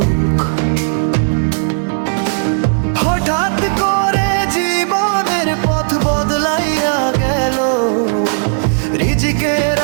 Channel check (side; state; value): left; silent; digital silence